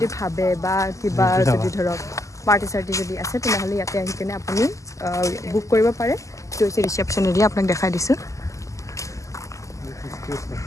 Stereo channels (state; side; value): late; right; 0.16 ms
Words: ভাবে বা কিবা যদি ধৰক পাৰ্টি চাৰ্টি যদি আছে তেনেহলে ইয়াতে আহি কেনে আপুনি বুক কৰিব পাৰে তো হৈছে ৰিসেপশন এৰিয়া আপোনাক দেখাই দিছো